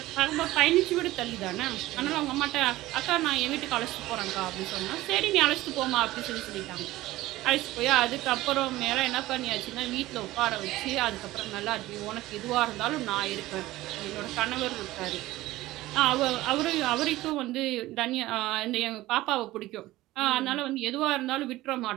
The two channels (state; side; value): quieter; left; 17.2 dB